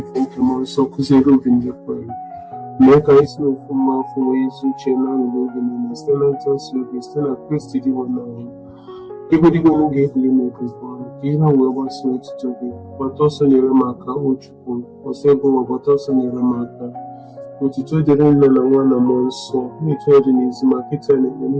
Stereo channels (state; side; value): identical; both; correlation 1.00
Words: Pokemon Sokuzero Bindukwani. Meka is no former for ways which are not living in a Stellantis, still a Christy one. Everybody going to get limited one. Kira wewe sweat to be, but also near Maka, which or several, but also near Maka. Utito didn't know one among so, me told in his market and any